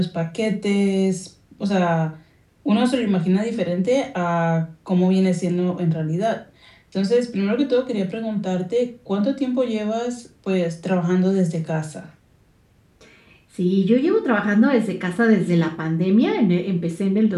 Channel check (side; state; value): both; identical; correlation 1.00